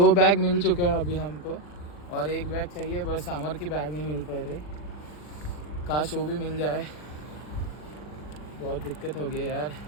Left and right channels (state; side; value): late; right; 40 ms